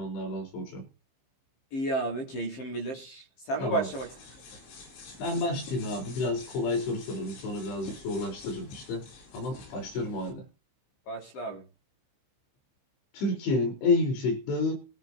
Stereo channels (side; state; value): right; late; 15 ms